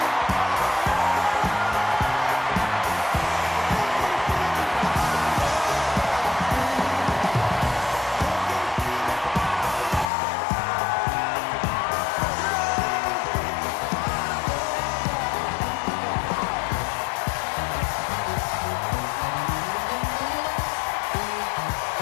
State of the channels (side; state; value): right; drops out; at 10.1 s